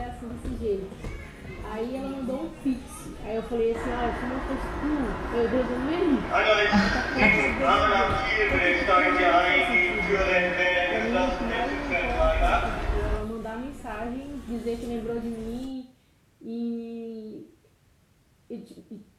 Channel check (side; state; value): both; identical; correlation 1.00